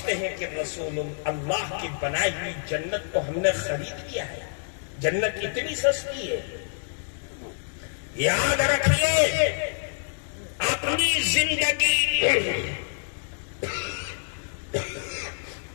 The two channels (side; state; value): right; silent; digital silence